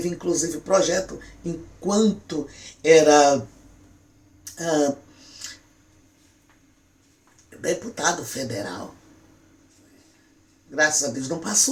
inclusive, projeto enquanto era deputado federal. Graças a Deus não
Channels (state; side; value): identical; both; correlation 1.00